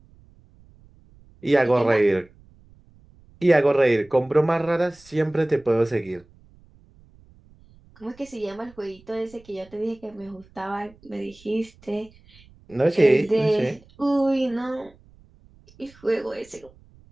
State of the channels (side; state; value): right; noise; rumble, 27 dB below the sound